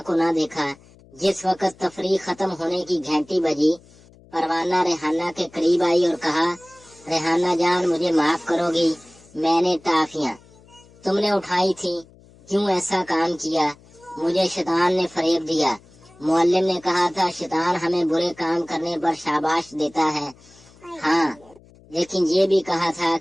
کو نہ دیکھا۔ جس وقت تفریح ختم ہونے کی گھنٹی بجی، پروانہ ریحانہ کے قریب آئی اور کہا، ریحانہ جان مجھے معاف کرو گی، میں نے ٹافیاں تم نے اٹھائی تھی، کیوں ایسا کام کیا؟ مجھے شیطان نے فریب دیا۔ معلم نے کہا تھا شیطان ہمیں برے کام کرنے پر شاباش دیتا ہے۔ ہاں، لیکن یہ بھی کہا تھا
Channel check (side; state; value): left; noise; hum, 26 dB below the sound